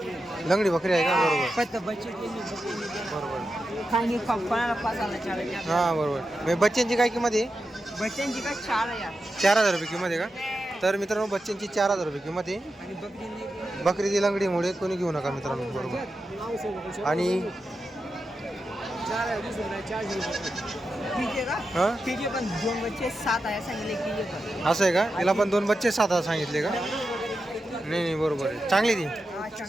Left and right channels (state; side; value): normal; both; correlation 0.89